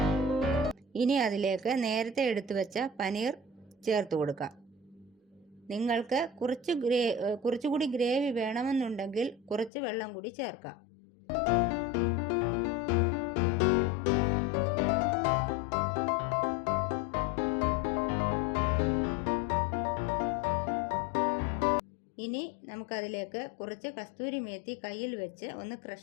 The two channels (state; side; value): drops out; right; at 9.7 s